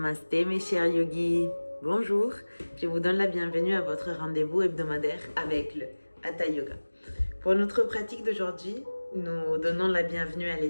mes chers yogis, bonjour, je vous donne la bienvenue à votre rendez-vous hebdomadaire avec le Hatha Yoga. Pour notre pratique d'aujourd'hui, nous donnons la bienvenue à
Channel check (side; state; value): both; inverted; correlation -1.00